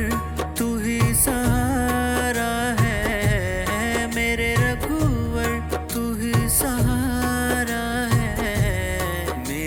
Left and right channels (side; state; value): both; identical; correlation 1.00